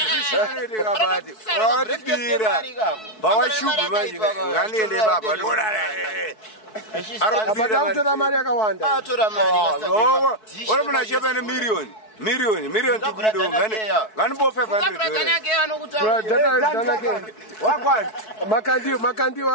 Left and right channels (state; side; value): late; right; 4.6 ms